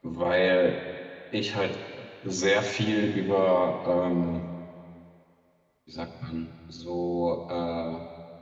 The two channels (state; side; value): identical; both; correlation 1.00